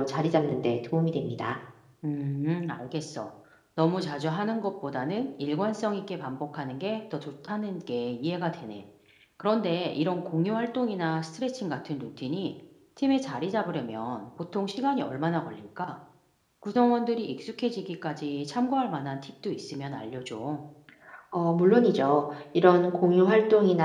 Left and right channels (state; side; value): identical; both; correlation 1.00